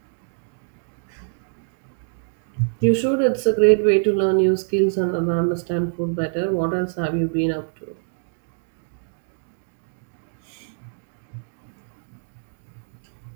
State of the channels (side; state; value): left; silent; 56 dB below the other